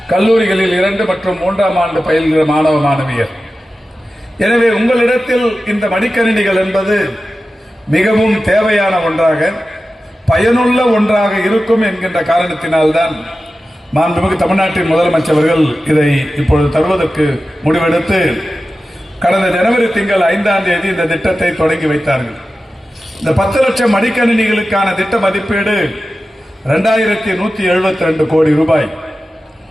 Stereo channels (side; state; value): both; normal; correlation 0.94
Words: கல்லூரிகளில் 2 மற்றும் 3ஆம் ஆண்டு பயில்கிற மாணவ மாணவியர். எனவே உங்களிடத்தில் இந்த மடிக்கணினிகள் என்பது மிகவும் தேவையான ஒன்றாக, பயனுள்ள ஒன்றாக இருக்கும் என்கின்ற காரணத்தினால்தான் மாண்புமிகு தமிழ்நாட்டின் முதலமைச்சர்கள் இதை இப்பொழுது தருவதற்கு முடிவெடுத்து கடந்த ஜனவரி திங்கள் 5ஆம் தேதி இந்த திட்டத்தை தொடங்கி வைத்தார்கள். இந்த 10 லட்சம் மடிக்கணினிகளுக்கான திட்ட மதிப்பீடு 2172 கோடி ரூபாய்.